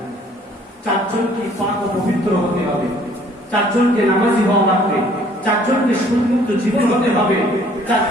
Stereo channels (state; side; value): normal; both; correlation 0.58